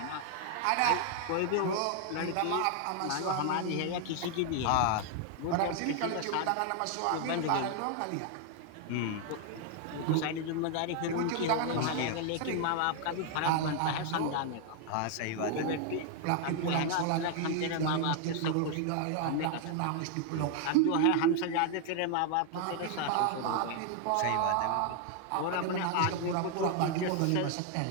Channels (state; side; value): different; both; correlation 0.00